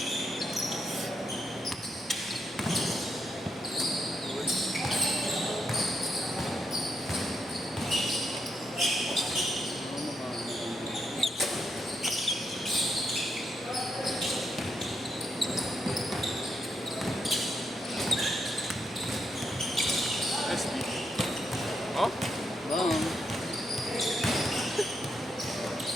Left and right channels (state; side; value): normal; both; correlation 0.81